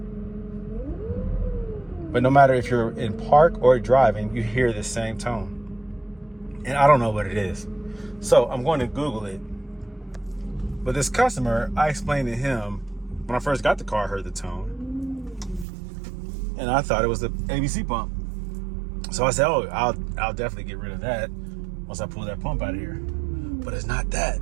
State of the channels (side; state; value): left; drops out; at 15.7 s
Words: But no matter if you're in park or driving, you hear the same tone. And I don't know what it is. So I'm going to Google it. But this customer, I explained to him, when I first got the car, I heard the tone. And I thought it was the ABC pump. So I said, oh, I'll definitely get rid of that once I pull that pump out of here. But it's not that.